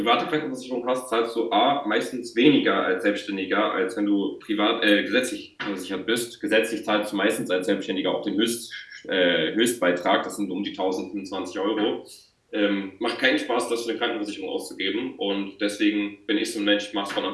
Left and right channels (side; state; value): both; identical; correlation 1.00